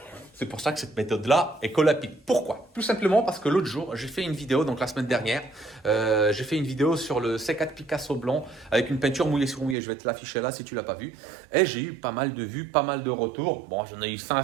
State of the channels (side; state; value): left; drops out; at 9.8 s